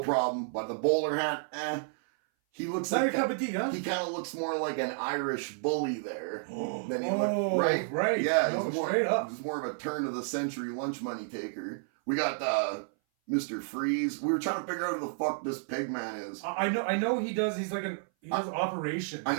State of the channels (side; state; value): left; silent; 57 dB below the other